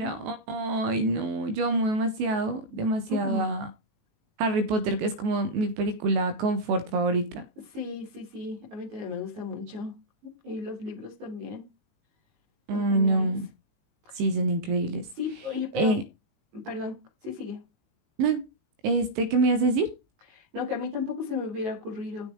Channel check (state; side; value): late; left; 19 ms